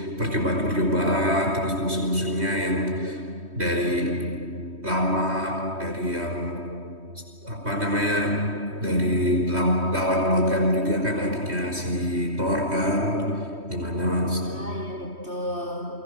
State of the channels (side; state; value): left; late; 3.1 ms